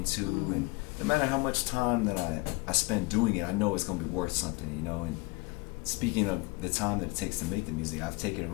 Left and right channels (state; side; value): quieter; right; 24.1 dB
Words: and no matter how much time that I spend doing it, I know it's gonna be worth something, you know. And speaking of the time that it takes to make the music, I've taken a